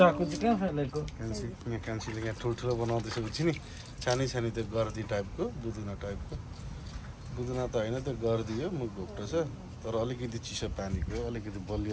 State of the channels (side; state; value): both; identical; correlation 1.00